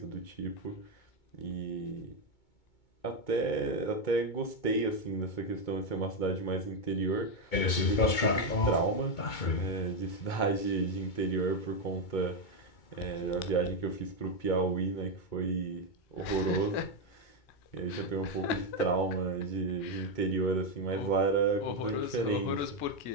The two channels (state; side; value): late; right; 2.2 ms